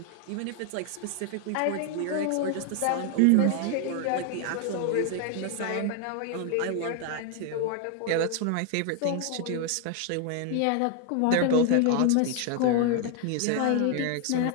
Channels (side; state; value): both; different; correlation 0.00